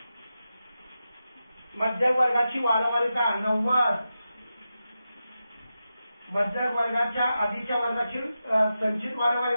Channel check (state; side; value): inverted; both; correlation -0.90